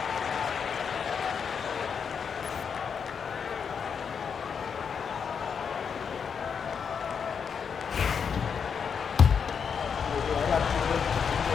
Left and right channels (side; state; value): right; quieter; 6.6 dB